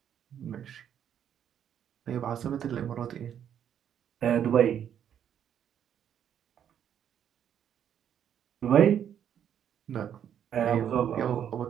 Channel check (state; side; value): quieter; left; 9.3 dB